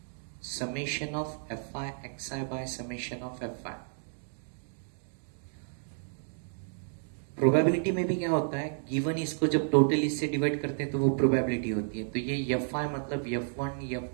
summation of FI XI by summation of FI। Probability में भी क्या होता है, गिवन इसको जब टोटल इससे डिवाइड करते हैं तो वो प्रोबेबिलिटी होती है। तो ये FI मतलब F1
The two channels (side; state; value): left; silent; digital silence